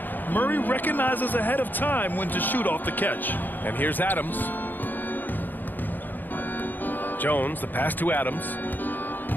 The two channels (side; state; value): right; late; 0.088 ms